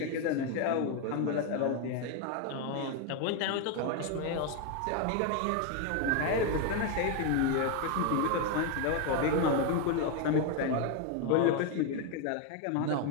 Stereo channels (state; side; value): different; both; correlation 0.02